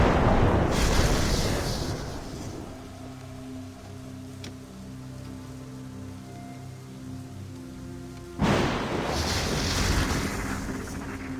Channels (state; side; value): identical; both; correlation 1.00